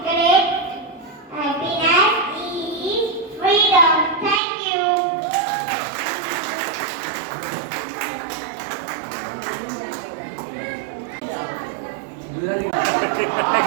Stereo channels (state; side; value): drops out; left; at 4.4 s